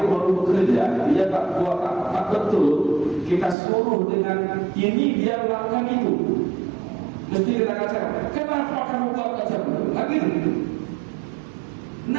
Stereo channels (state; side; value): drops out; left; at 3.6 s